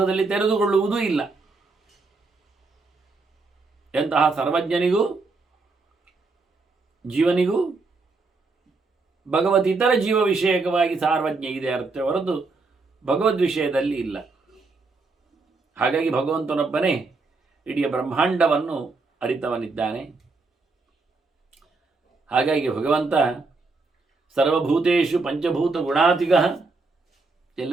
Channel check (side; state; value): left; quieter; 3.8 dB